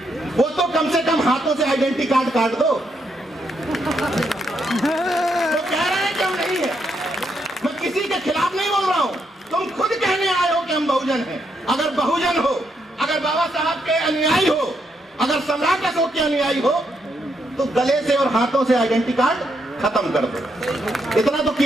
वो तो कम से कम हाथों से आइडेंटिटी कार्ड काट दो। वो कह रहे हैं कि हम नहीं है, मैं किसी के खिलाफ नहीं बोल रहा हूं, तुम खुद कहने आए हो कि हम बहुजन हैं। अगर बहुजन हो, अगर बाबा साहब के अनुयायी हो, अगर सम्राट अशोक के अनुयायी हो, तो गले से और हाथों से आइडेंटिटी कार्ड खत्म कर दो। इतना तो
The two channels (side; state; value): both; normal; correlation 0.78